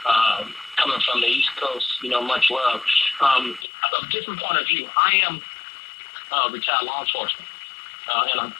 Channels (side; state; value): right; drops out; at 3.7 s